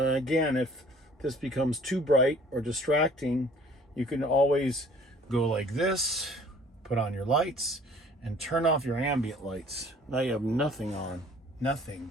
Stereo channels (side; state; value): both; normal; correlation 0.53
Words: if this becomes too bright or distracting, you can always go like this, put on your lights, and turn off your ambient lights. Now you have nothing on, nothing.